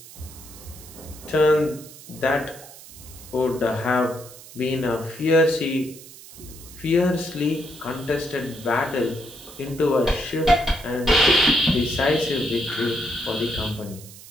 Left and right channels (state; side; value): noise; right; hiss, 18 dB below the sound